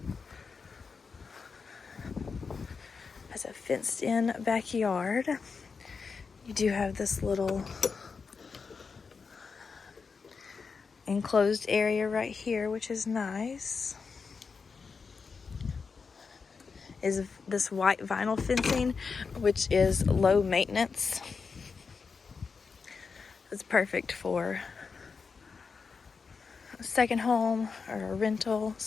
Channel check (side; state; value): right; quieter; 5.2 dB